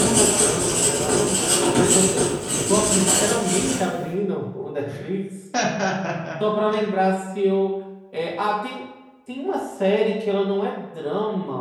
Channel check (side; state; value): both; identical; correlation 1.00